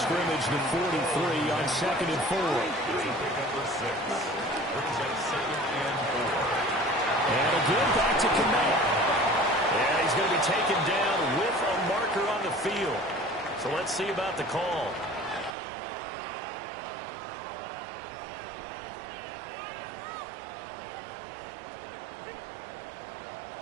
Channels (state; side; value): drops out; left; at 15.6 s